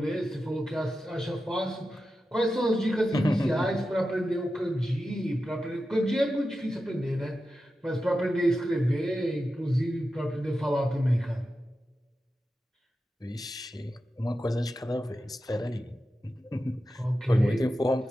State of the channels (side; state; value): both; normal; correlation 0.91